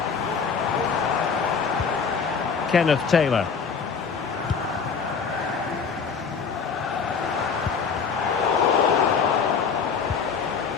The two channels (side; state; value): right; quieter; 5.9 dB